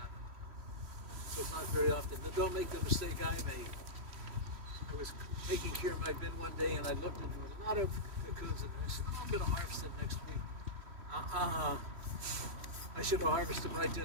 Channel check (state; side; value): late; left; 3.1 ms